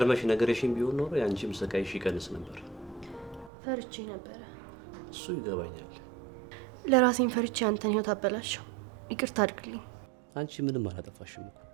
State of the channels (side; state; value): left; drops out; at 3.5 s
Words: ነገርሽን ቢሆን ኖሮ ያንቺም ስቃይሽ ይቀንስ ነበር። ፈርቼ ነበረ። እሱ ይገባኛል። ለራሴን ፈርቼ አንተን ህይወት አበላሸው። ይቅርታ አድርግልኝ። አንቺ ምንም አላጠፋሽም እኮ